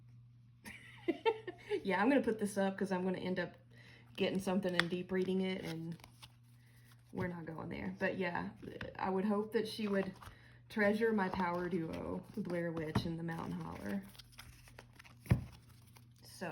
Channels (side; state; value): both; identical; correlation 1.00